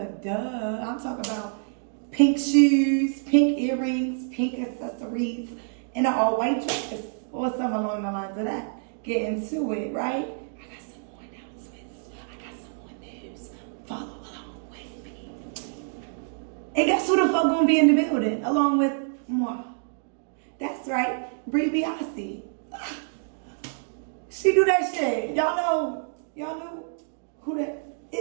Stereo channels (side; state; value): left; silent; digital silence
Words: duh. I'm talking about pink shoes, pink earrings, pink accessories, and an all-white dress, or something along the lines of that. Get into it, right? I got some more announcements. I got some more news. Follow along with me. And guess who the fuck gonna be in the building, along with moi? That's right, Bri Biase. She do that shit. Y'all know who that